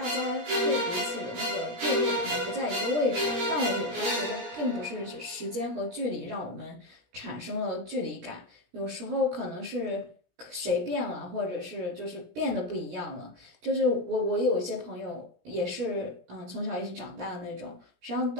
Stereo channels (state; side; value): late; left; 17 ms